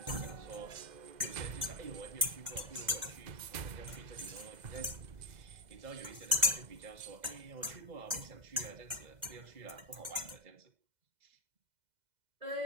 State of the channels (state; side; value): late; left; 2.0 ms